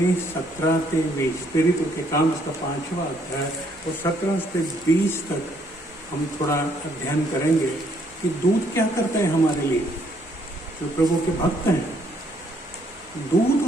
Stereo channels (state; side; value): normal; both; correlation 0.68